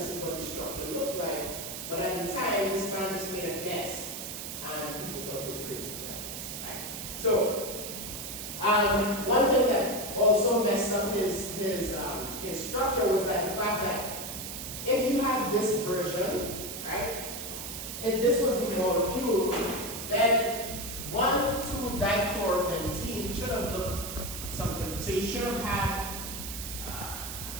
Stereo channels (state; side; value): noise; right; hiss, 7 dB below the sound